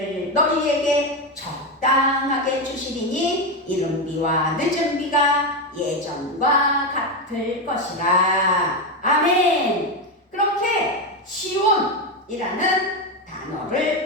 너희에게 적당하게 주시리니 이른비와 늦은비가 예전과 같을 것이라. 아멘. 그렇게 시온이라는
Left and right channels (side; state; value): both; normal; correlation 0.11